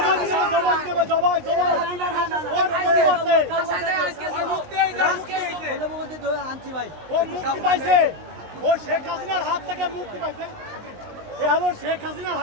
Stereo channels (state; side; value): late; left; 20 ms